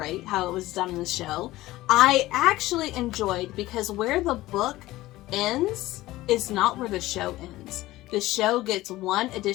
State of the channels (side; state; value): right; quieter; 17.2 dB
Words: how it was done in the show. I actually enjoyed, because where the book ends is not where the show ends. The show gets one